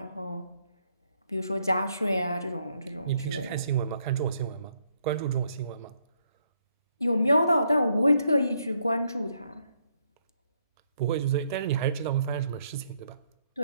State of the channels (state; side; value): inverted; both; correlation -0.73